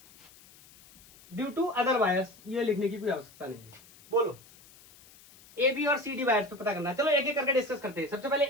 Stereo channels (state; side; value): noise; left; hiss, 24 dB below the sound